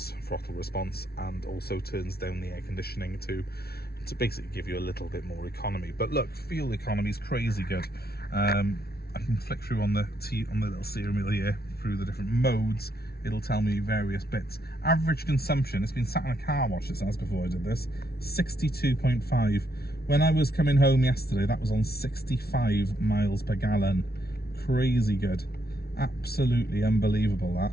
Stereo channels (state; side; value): late; right; 0.45 ms